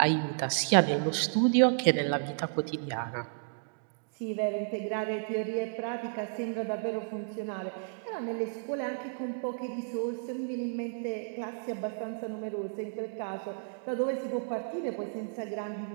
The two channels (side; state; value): left; silent; digital silence